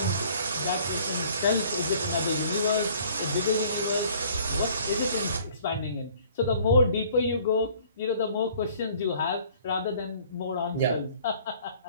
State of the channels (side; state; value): both; inverted; correlation -0.55